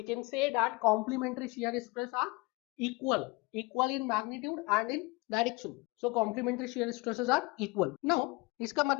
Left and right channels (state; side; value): quieter; right; 24.8 dB